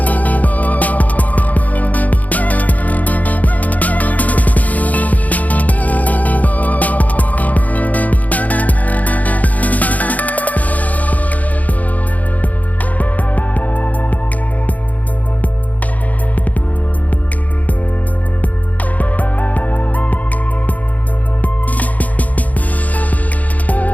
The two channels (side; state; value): right; late; 0.076 ms